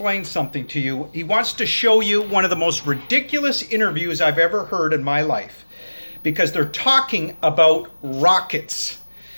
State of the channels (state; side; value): inverted; both; correlation -1.00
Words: something to you. He wants to show you one of the most ridiculous interviews I've ever heard in my life because they're talking about rockets.